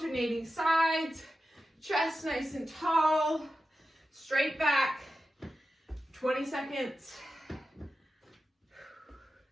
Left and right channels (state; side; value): normal; both; correlation 0.92